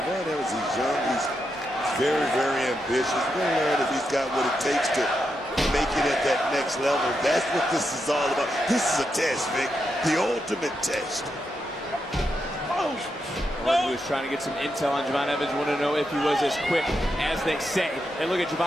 Evans, he's young, he's very, very ambitious. We're going to learn if he's got what it takes to make it at that next level. That's what this is all about. This is a test, Vic. The ultimate test. Orton was trying to get some intel on Javon Evans, wanted to know if he was as quick as they say. And look at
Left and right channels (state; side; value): normal; both; correlation 0.84